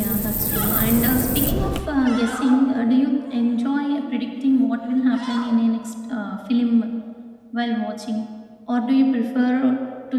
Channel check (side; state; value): both; identical; correlation 1.00